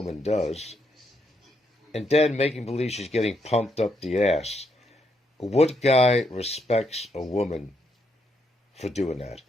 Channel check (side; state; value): both; normal; correlation 0.77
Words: does, and then making believe she's getting pumped up the ass. What guy respects a woman for doing that?